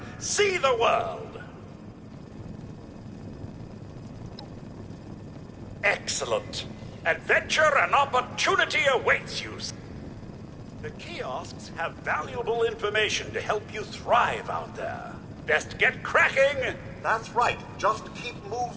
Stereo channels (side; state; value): both; identical; correlation 1.00